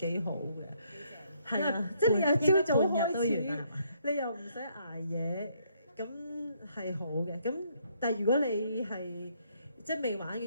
好嘅，係啊，即係你又朝早開始，你又唔使捱夜，咁係好嘅。咁但係如果你係即係未玩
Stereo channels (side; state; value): both; inverted; correlation -0.70